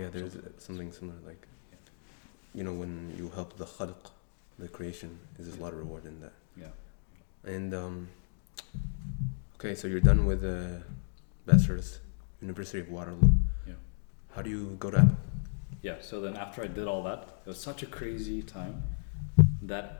there's something similar. Like, when you help the khalq, the creation, there's a lot of reward in that. Yeah. And okay, so you're done with bachelor's, University of Waterloo. Yeah. How do you go to Apple? Yeah. So then after I did all that, it was such a crazy time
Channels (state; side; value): silent; right; digital silence